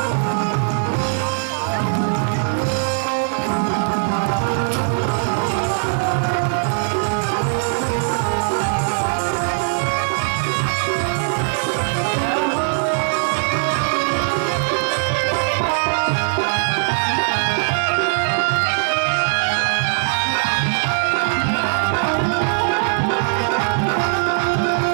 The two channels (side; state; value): left; silent; digital silence